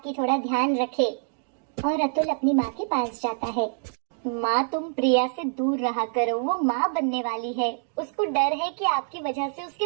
थोड़ा ध्यान रखे। और अतुल अपनी माँ के पास जाता है। माँ, तुम प्रिया से दूर रहा करो, वो माँ बनने वाली है। उसको डर है कि आपकी वजह से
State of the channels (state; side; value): silent; left; digital silence